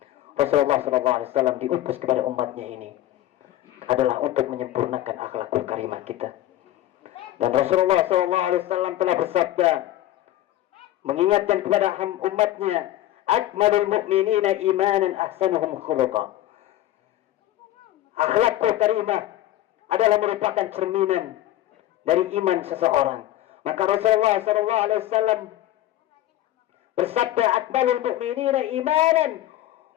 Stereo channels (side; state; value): right; quieter; 13.9 dB